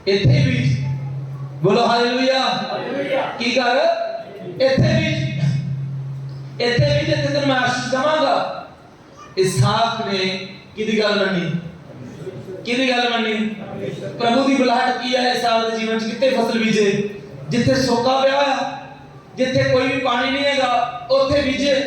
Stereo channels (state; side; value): identical; both; correlation 1.00